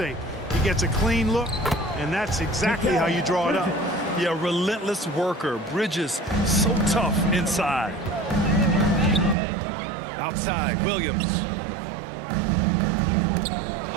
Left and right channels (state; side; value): drops out; left; at 9.3 s